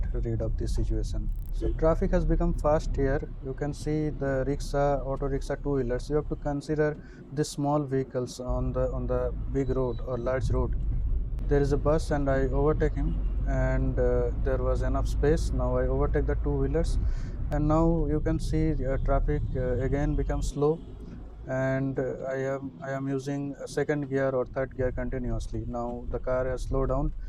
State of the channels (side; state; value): both; identical; correlation 1.00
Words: rid of this situation. So traffic has become fast here. You can see the rickshaw, auto rickshaw, two-wheelers. You have to consider the small vehicles on the big road or large road. There is a bus and I overtake him, and there was enough space. Now I overtake the two-wheelers, and now you can see traffic again becomes slow, and I am using second gear or third gear continuously. Now the car has slowed down,